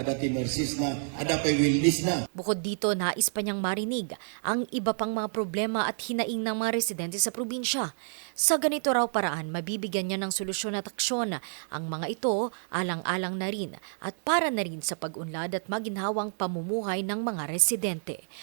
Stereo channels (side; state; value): left; silent; digital silence